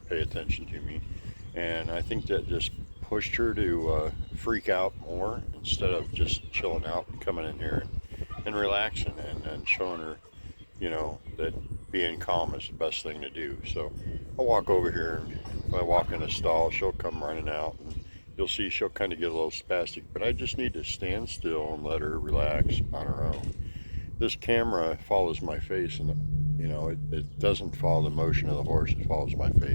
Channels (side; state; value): both; inverted; correlation -1.00